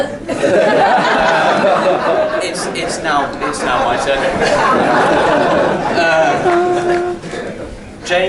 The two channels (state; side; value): identical; both; correlation 1.00